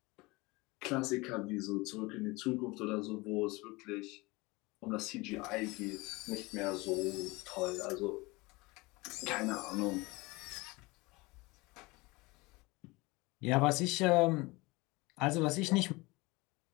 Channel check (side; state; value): right; quieter; 23.5 dB